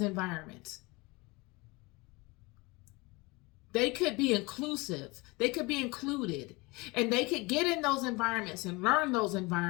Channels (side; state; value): right; quieter; 24.5 dB